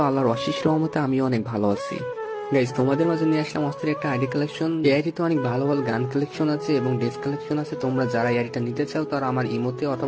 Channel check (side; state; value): both; identical; correlation 1.00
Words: আল্লাহর অশেষ রহমতে আমিও অনেক ভালো আছি। গাইস, তোমাদের মাঝে নিয়ে আসলাম অস্থির একটা আইডি কালেকশন। এই আইডিতে অনেক ভালো ভালো গান কালেকশন আছে এবং ড্রেস কালেকশন আছে। তোমরা যারা এই আইডিটা নিতে চাও তারা আমার ইমোতে